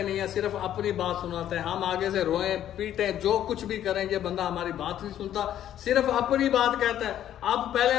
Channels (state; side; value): quieter; right; 11.2 dB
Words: नहीं है, सिर्फ अपनी बात सुनाता है। हम आगे से रोए पीटे जो कुछ भी करें, ये बंदा हमारी बात नहीं सुनता, सिर्फ अपनी बात कहता है। अब पहले